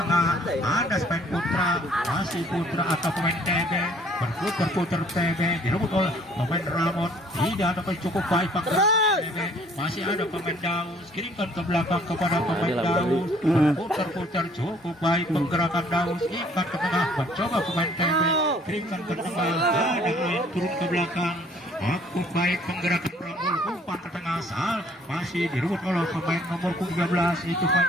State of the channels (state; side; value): normal; both; correlation 0.59